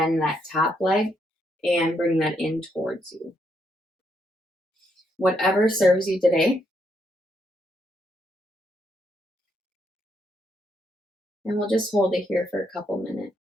that top leg and bring that in towards you. Whatever serves you today. And we'll just hold it here for a couple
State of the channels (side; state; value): both; normal; correlation 0.77